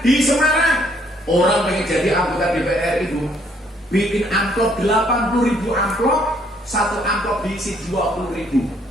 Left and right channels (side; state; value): both; normal; correlation 0.67